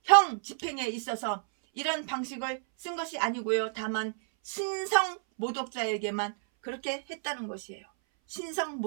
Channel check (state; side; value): silent; left; 58 dB below the other